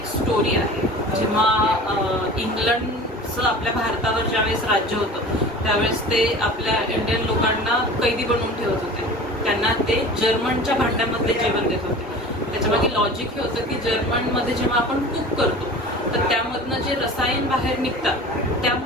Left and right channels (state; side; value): normal; both; correlation 0.39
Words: स्टोरी आहे. जेव्हा इंग्लंडचं आपल्या भारतावर ज्यावेळेस राज्य होतं त्यावेळेस ते आपल्या इंडियन लोकांना कैदी बनवून ठेवत होते. त्यांना ते जर्मनच्या भांड्यामध्ये जेवण देत होते. त्याच्यामागे लॉजिक हे होतं की जर्मनमध्ये जेव्हा आपण कुक करतो तर त्यामधनं जे रसायन बाहेर निघतात